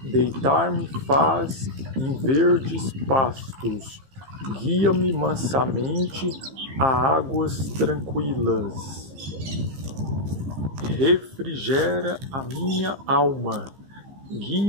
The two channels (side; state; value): left; late; 15 ms